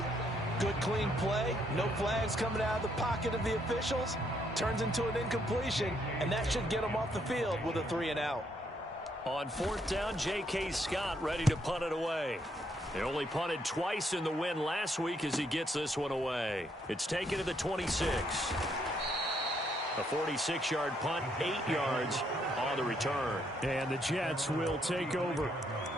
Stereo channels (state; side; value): normal; both; correlation 0.73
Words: Good clean play. No flags coming out of the pocket of the officials. Turns into an incompletion, and that should get them off the field with a 3 and out. On 4th down, J.K. Scott ready to punt it away. They only punted twice in the win last week as he gets this one away. It's taken to the 26. A 46-yard punt, 8 yards on the return. And the Jets will take over.